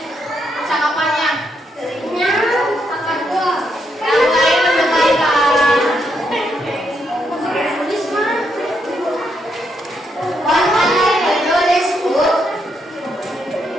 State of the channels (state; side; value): normal; both; correlation 0.78